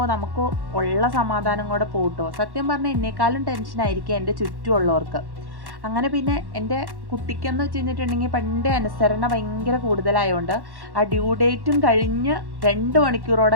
നമുക്ക് ഉള്ള സമാധാനം കൂടെ പോട്ടോ. സത്യം പറഞ്ഞാൽ എന്നെക്കാളും ടെൻഷനായിരിക്കും എൻ്റെ ചുറ്റുമുള്ളവർക്ക്. അങ്ങനെ പിന്നെ എൻ്റെ കുട്ടിക്കെന്ന് വെച്ച് കഴിഞ്ഞിട്ടുണ്ടെങ്കിൽ പണ്ടേ അനുസരണ ഭയങ്കര കൂടുതലായതുകൊണ്ട് ആ ഡ്യൂ ഡേറ്റും കഴിഞ്ഞ് 2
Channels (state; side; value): late; left; 1.1 ms